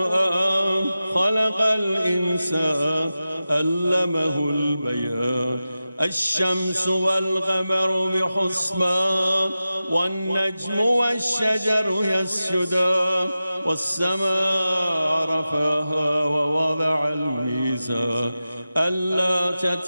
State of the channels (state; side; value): inverted; both; correlation -0.94